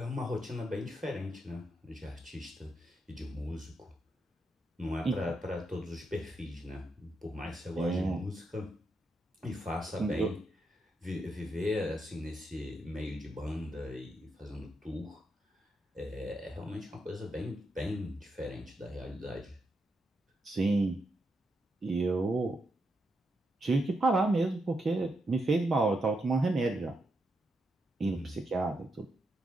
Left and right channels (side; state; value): both; normal; correlation 0.82